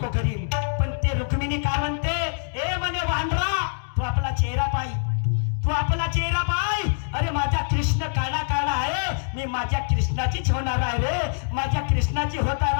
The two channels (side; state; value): right; silent; digital silence